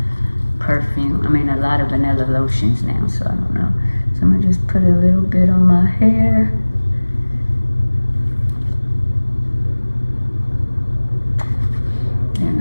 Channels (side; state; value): both; inverted; correlation -1.00